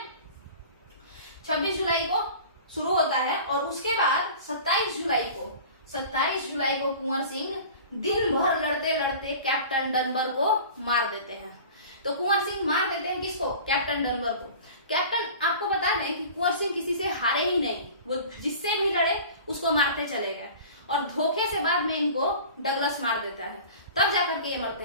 26 जुलाई को शुरू होता है, और उसके बाद 27 जुलाई को कुंवर सिंह दिन भर लड़ते लड़ते कैप्टन डनबर को मार देते हैं। तो कुंवर सिंह मार देते हैं किसको, कैप्टन डनबर को। कैप्टन, आपको बता दें कि कुंवर सिंह किसी से हारे ही नहीं, वो जिससे भी लड़े उसको मारते चले गए, और धोखे से बाद में इनको डगलस मार देता है, तब जाकर के ये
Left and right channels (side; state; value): both; inverted; correlation -0.40